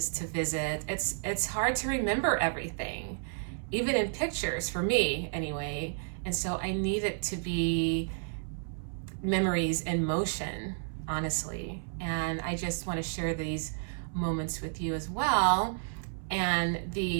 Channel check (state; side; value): silent; left; 57 dB below the other